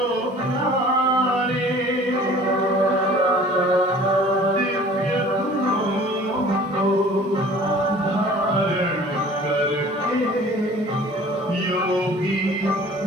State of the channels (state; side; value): normal; both; correlation 0.48